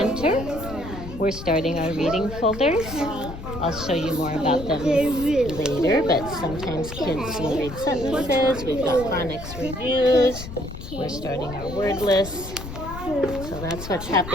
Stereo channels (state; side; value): noise; left; rumble, 10 dB below the sound